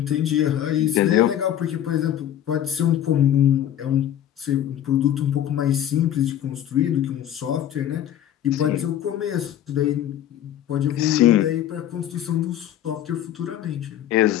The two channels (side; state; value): right; quieter; 11.0 dB